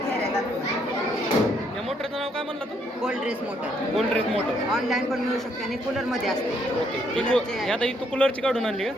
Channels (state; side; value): normal; both; correlation 0.71